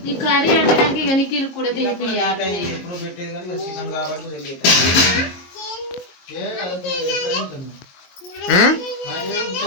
ఈ కర్రీ అంటే ఇక నిఖిల్ కూడా తినిపియాలి. ఎప్పుడు పెట్టేది కానీ చికెన్ కాబట్టి తెలియదు.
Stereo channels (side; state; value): right; late; 22 ms